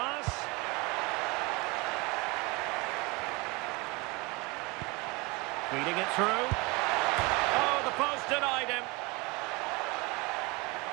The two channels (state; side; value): quieter; left; 26.2 dB